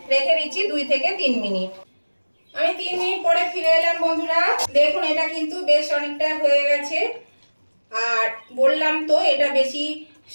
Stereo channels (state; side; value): inverted; both; correlation -1.00